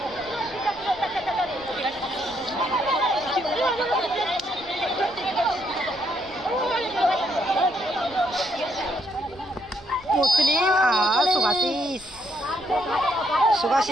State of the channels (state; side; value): noise; right; rumble, 23 dB below the sound